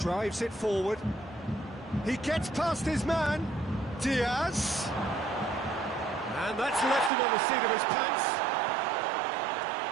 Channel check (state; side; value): drops out; left; at 7.1 s